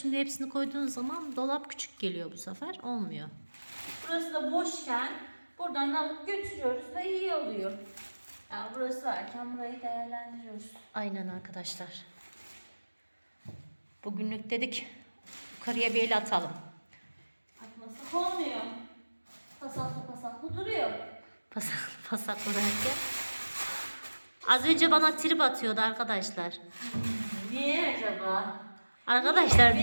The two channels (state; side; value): inverted; both; correlation -1.00